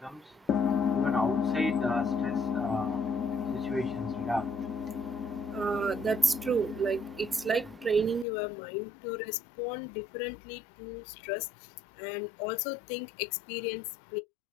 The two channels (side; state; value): right; drops out; at 8.2 s